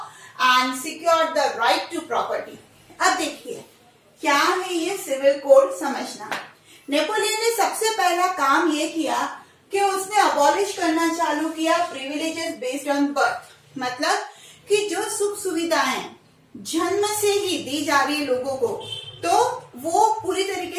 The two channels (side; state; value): both; identical; correlation 1.00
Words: and secured the right to property. अब देखिए क्या है ये सिविल कोड समझना। नेपोलियन ने सबसे पहला काम ये किया कि उसने अबॉलिश करना चालू किया प्रिविलेजेस बेस्ड ऑन बर्थ। मतलब कि जो सुख सुविधाएं जन्म से ही दी जा रही है लोगों को, तो वो पूरी